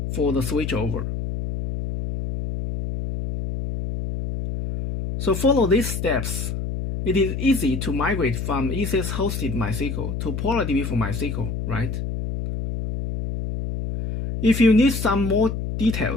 for the switchover. So follow these steps. It is easy to migrate from ECS hosted MySQL to PolarDB for MySQL, right? If you need some more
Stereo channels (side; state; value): left; noise; hum, 4 dB below the sound